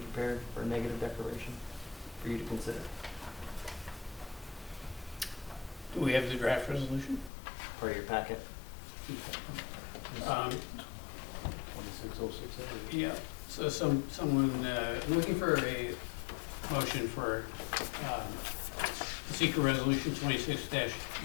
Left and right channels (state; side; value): drops out; right; at 7.3 s